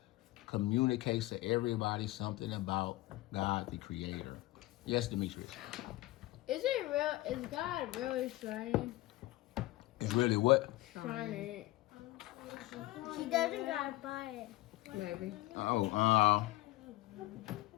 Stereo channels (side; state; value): right; quieter; 18.5 dB